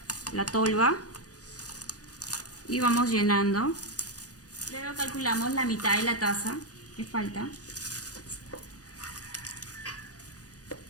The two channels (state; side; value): late; right; 0.67 ms